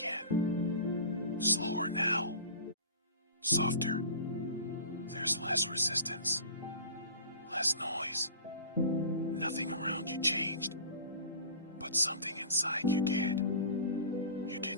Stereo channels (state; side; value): inverted; both; correlation -0.38